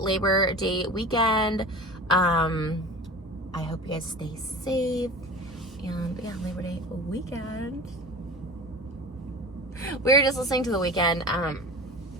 Day weekend. I hope you guys stay safe. And yeah, Labor Day weekend. We were just listening to The Weeknd.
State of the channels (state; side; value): normal; both; correlation 0.35